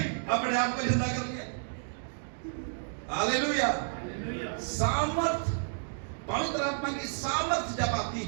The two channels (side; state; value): left; silent; digital silence